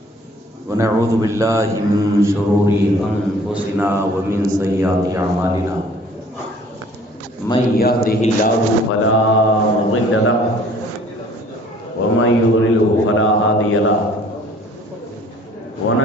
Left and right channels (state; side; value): normal; both; correlation 0.54